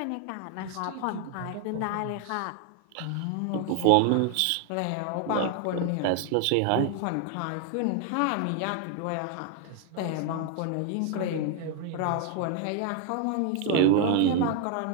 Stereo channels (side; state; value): both; different; correlation 0.00